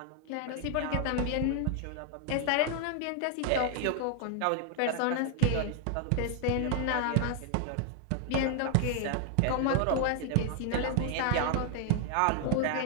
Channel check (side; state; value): both; different; correlation 0.00